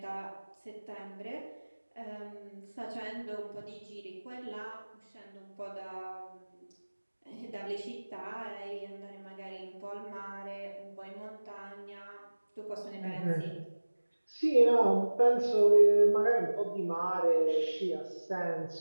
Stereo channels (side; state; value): both; inverted; correlation -1.00